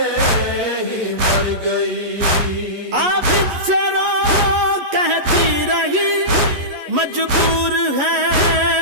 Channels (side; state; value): left; late; 11 ms